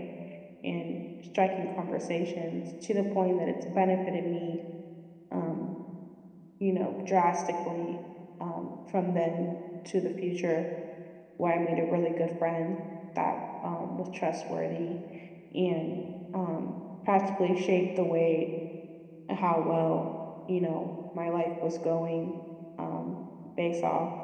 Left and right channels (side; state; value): both; identical; correlation 1.00